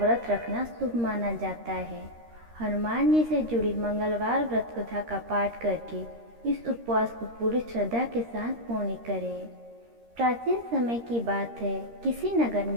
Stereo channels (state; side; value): late; left; 13 ms